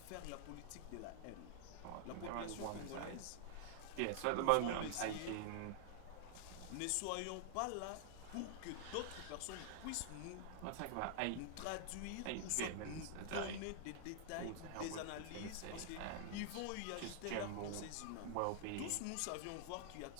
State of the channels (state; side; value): different; both; correlation 0.00